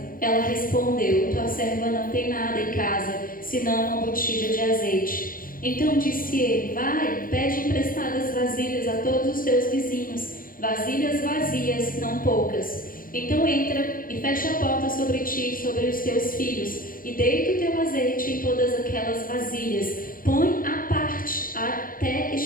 Ela respondeu: tua serva não tem nada em casa, senão uma botija de azeite. Então disse ele: vai, pede emprestadas vasilhas a todos os teus vizinhos, vasilhas vazias, não poucas. Então entra e fecha a porta sobre ti e sobre os teus filhos, e deita o teu azeite em todas aquelas vasilhas. Põe à parte até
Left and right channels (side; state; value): right; late; 0.41 ms